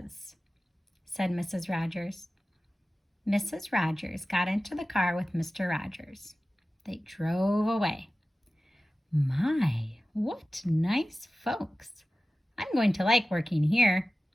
said Mrs. Rogers. Mrs. Rogers got into the car with Mr. Rogers. They drove away. My, what nice folks. I'm going to like working here,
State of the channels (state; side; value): normal; both; correlation 0.96